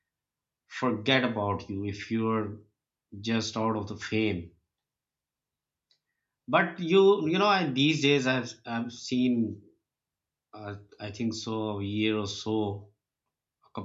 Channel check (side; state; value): both; identical; correlation 1.00